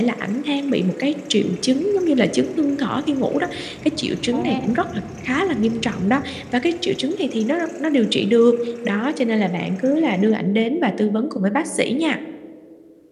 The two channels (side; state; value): both; identical; correlation 1.00